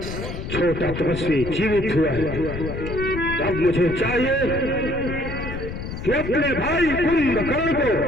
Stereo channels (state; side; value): noise; left; rumble, 7 dB below the sound